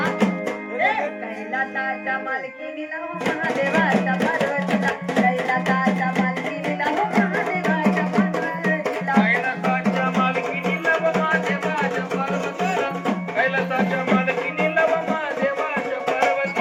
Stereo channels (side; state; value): both; identical; correlation 1.00